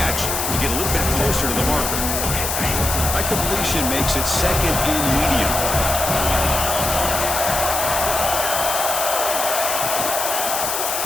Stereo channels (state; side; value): noise; left; hiss, 1 dB below the sound